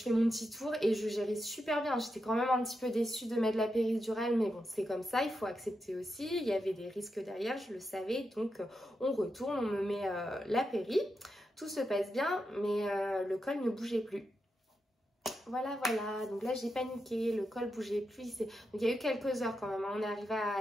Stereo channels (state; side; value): normal; both; correlation 0.87